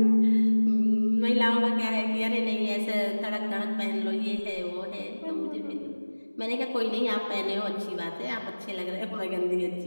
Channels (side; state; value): both; inverted; correlation -1.00